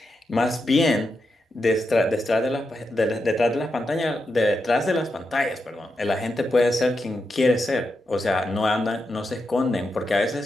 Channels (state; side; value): normal; both; correlation 0.86